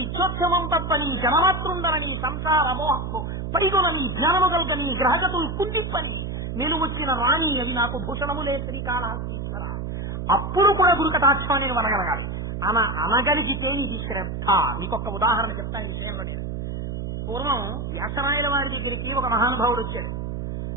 తప్పని జనమాతృండరని సంసార మోహము పైగొనని జ్ఞానము కల్గని గ్రహగతులు కుండిప్పని నేను వచ్చిన రాణి అది నాకు భూషణములే శ్రీకాళహస్తీశ్వర. అప్పుడు కూడా గురుకటాక్షాన్ని అనగలగాలి. అనగలిగితే ఇది శ్రద్ధ. మీకొక ఉదాహరణ చెప్తాను ఈ విషయంలో. నేను పూర్వం వ్యాసరాయల వారి దగ్గరికి ఒక మహానుభావుడు వచ్చాడు.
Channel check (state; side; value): noise; right; hum, 5 dB below the sound